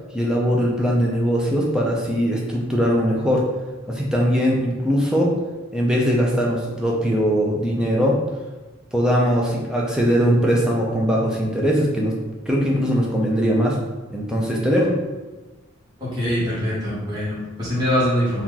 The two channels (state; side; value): normal; both; correlation 0.71